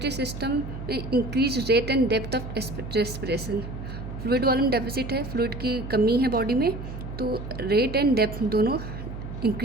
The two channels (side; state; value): right; noise; hum, 9 dB below the sound